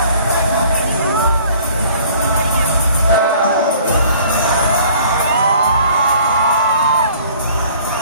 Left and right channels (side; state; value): both; inverted; correlation -0.53